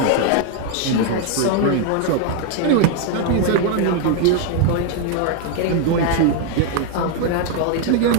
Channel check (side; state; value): both; different; correlation 0.01